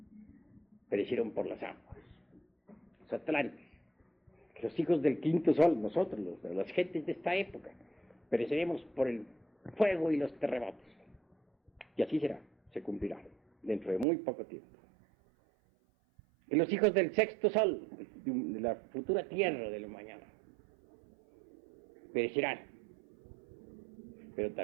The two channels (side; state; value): left; drops out; at 14.1 s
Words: perecieron por las aguas. Los atlantes, que los hijos del quinto sol, nosotros, las gentes de esta época, pereceremos por el fuego y los terremotos. Y así será, se cumplirá, dentro de muy poco tiempo. Y los hijos del sexto sol, de la futura tierra de la mañana, perecerán. Pero